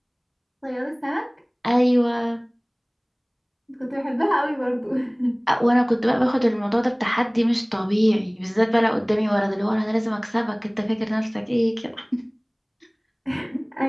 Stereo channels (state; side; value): identical; both; correlation 1.00